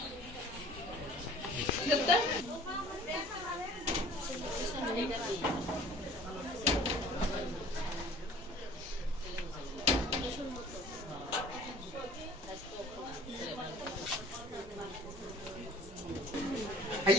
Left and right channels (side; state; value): both; normal; correlation 0.49